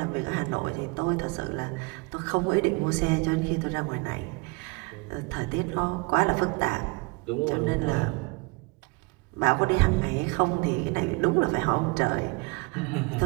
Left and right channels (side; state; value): left; quieter; 28.6 dB